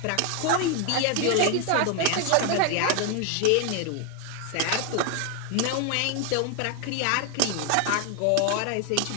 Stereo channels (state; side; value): different; both; correlation 0.01